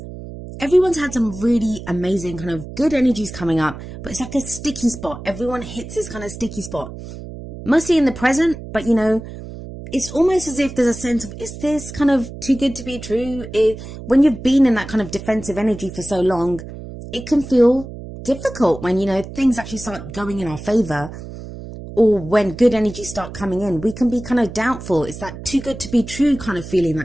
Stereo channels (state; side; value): noise; right; hum, 12 dB below the sound